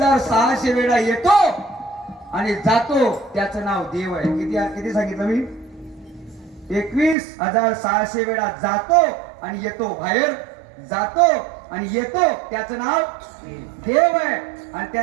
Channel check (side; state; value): left; drops out; at 7.2 s